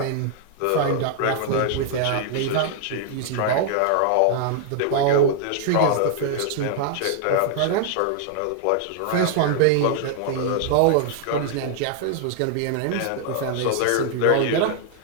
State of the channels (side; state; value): both; different; correlation 0.00